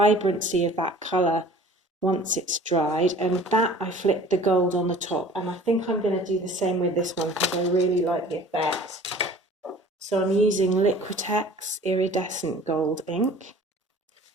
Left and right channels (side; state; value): both; normal; correlation 0.47